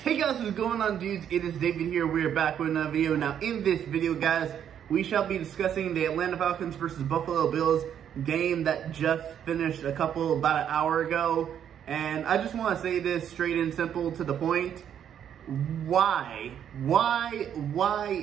Hey guys, what's going on, dudes? It is David here. We are back with another video. Now, in this video, guys, we shall be discussing the Atlanta Falcons versus Buffalo Bills game that just finished about an hour ago. And I just want to say this straight and simple to the point. Why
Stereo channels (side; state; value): left; quieter; 9.2 dB